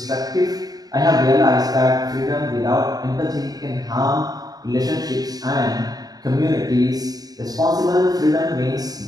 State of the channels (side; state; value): left; late; 0.18 ms